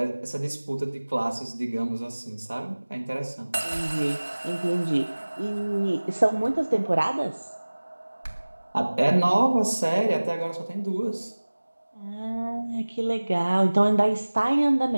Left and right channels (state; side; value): inverted; both; correlation -1.00